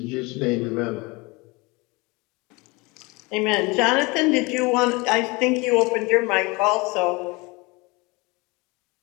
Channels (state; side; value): quieter; right; 25.6 dB